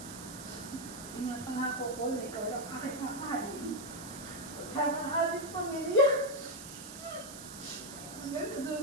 Ingat ang ako ko na ikaw lang aking mamahalin. Kasama ang ating pamilya. Hanggang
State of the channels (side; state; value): right; noise; hiss, 12 dB below the sound